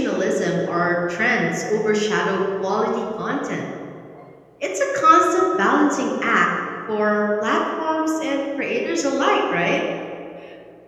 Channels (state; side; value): identical; both; correlation 1.00